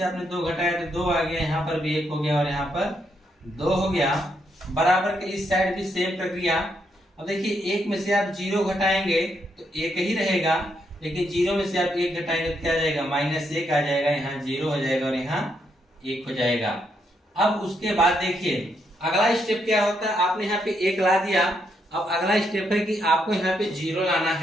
आपने 2 घटाया तो 2 आ गया, यहाँ पर भी 1 हो गया और यहाँ पर 2 हो गया। बराबर के इस साइड भी सेम प्रक्रिया। अब देखिए 1 में से आप 0 घटाएंगे तो 1 ही रहेगा, लेकिन 0 में से आप 1 घटाएंगे तो क्या आ जाएगा -1 आ जाएगा, यहाँ 0 हो जाएगा और यहाँ 1 हो जाएगा। अब उसके बाद देखिए अगला स्टेप क्या होता है, आपने यहाँ पे 1 ला दिया, अब अगला स्टेप है कि आपको यहाँ पे 0 लाना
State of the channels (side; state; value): both; normal; correlation 0.77